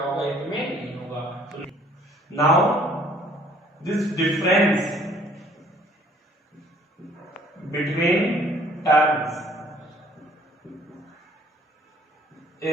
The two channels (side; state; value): both; normal; correlation 0.58